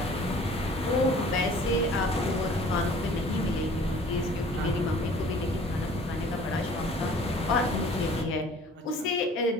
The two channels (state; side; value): normal; both; correlation 0.50